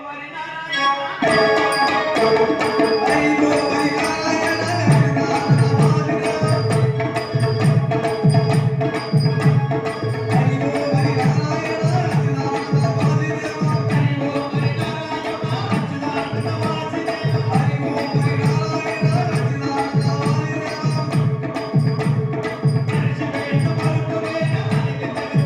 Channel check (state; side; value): identical; both; correlation 1.00